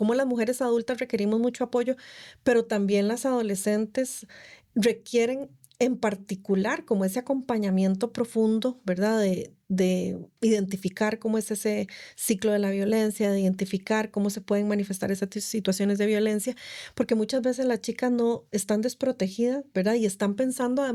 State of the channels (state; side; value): identical; both; correlation 1.00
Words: las mujeres adultas requerimos mucho apoyo, pero también las adolescentes requieren en particular como ese acompañamiento profundo, ¿verdad? De identificar cómo es ese ciclo de la violencia, de identificar cómo se pueden manifestar esas situaciones de violencia, porque muchas veces las chicas no están desprotegidas, ¿verdad? Y están pensando